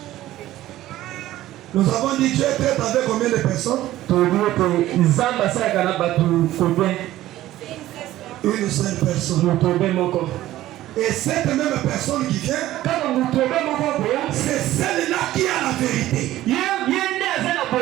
Nous avons dit Dieu traite avec combien de personnes? Une seule personne. Et cette même personne qui vient, c'est celle-là qui a la vérité.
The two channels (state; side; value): quieter; left; 14.8 dB